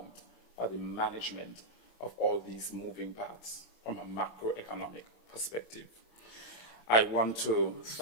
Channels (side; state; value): right; late; 27 ms